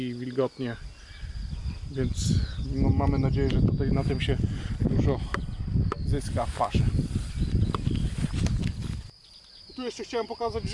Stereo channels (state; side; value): identical; both; correlation 1.00